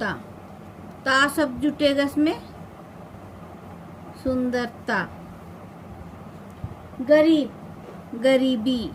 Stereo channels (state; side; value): identical; both; correlation 1.00